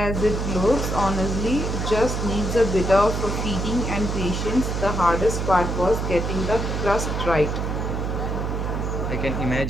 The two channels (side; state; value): right; noise; hum, 2 dB below the sound